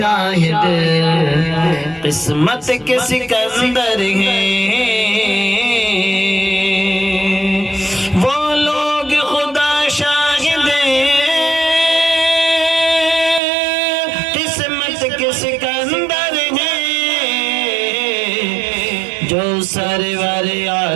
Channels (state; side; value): drops out; left; at 13.4 s